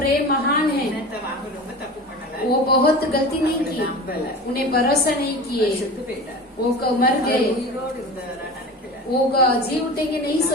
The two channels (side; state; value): both; normal; correlation 0.33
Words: महान है, என்னத்த வாங்க ரொம்ப தப்பு பண்ணல. वो बहुत गलती नहीं की, நம்பல. उन्हें भरोसा नहीं किए, செத்து போயிட்டார். वो मर அவர் गए, உயிரோடு இருந்தவரா நினைக்கல. वो जी उठेंगे नहीं